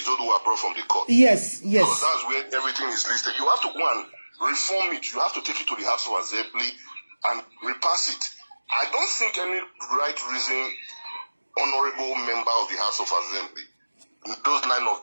brought from the court. Yes. Because that's where everything is listed. You have to go and reform it. You have to take it to the House of Assembly and repass it. I don't think any right reason honorable member of the House of Assembly, those 9 of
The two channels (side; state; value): both; inverted; correlation -1.00